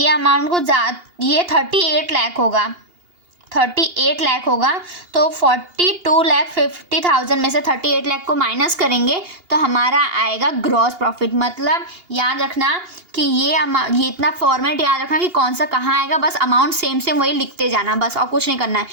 अमाउंट को ये 38 लाख होगा, 38 लाख होगा। तो 42,50,000 में से 38 लाख को माइनस करेंगे तो हमारा आएगा ग्रॉस प्रॉफिट। मतलब याद रखना कि ये इतना फॉर्मेट याद रखना कि कौन सा कहाँ आएगा, बस अमाउंट सेम सेम वही लिखते जाना बस, और कुछ नहीं करना है।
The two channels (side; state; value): left; late; 2.8 ms